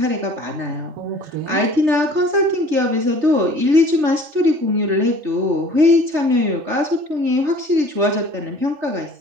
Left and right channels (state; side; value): late; left; 3.3 ms